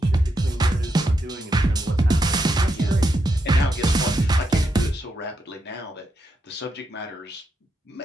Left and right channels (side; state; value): both; normal; correlation 0.83